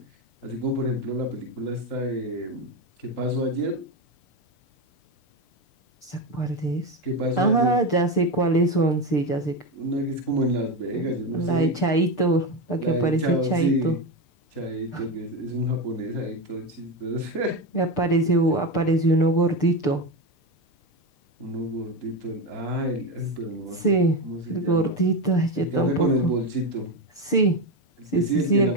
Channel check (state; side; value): late; right; 6.7 ms